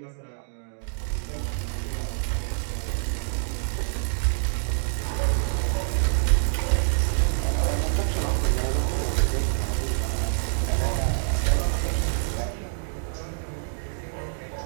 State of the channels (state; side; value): silent; left; digital silence